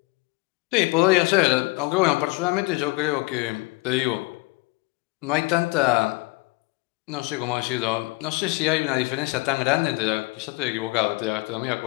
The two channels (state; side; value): quieter; right; 24.6 dB